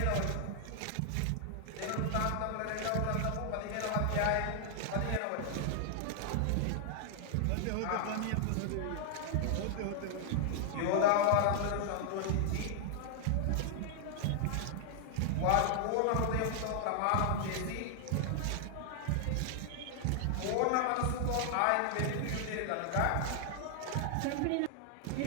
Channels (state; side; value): different; both; correlation 0.00